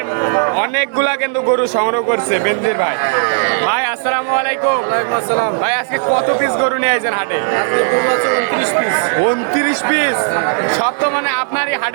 অনেকগুলা কিন্তু গরু সংগ্রহ করছে বেনজির ভাই। ভাই আসসালামু আলাইকুম। ভাই আজকে কত পিস গরু নিয়ে আইছেন হাটে? 29 পিস। সব তো মানে আপনারই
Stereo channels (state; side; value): silent; left; digital silence